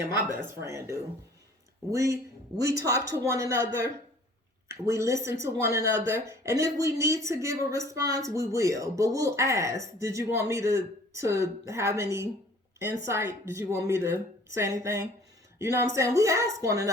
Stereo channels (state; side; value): normal; both; correlation 0.52